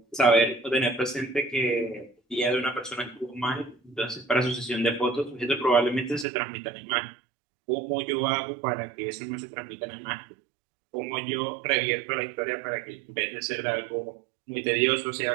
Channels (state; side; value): drops out; left; at 6.2 s